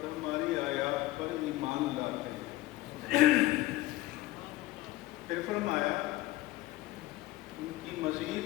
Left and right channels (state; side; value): quieter; right; 17.5 dB